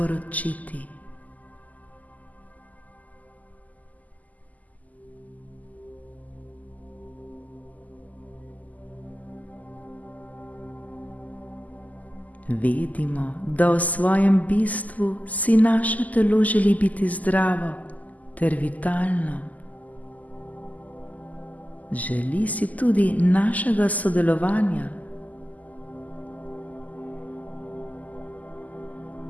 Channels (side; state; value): right; late; 0.077 ms